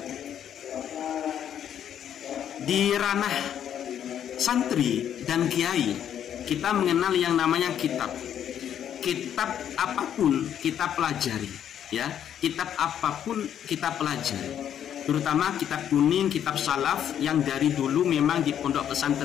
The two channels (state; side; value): quieter; right; 9.6 dB